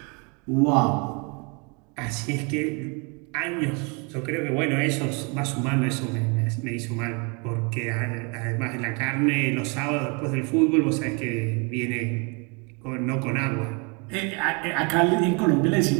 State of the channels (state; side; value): quieter; left; 32.7 dB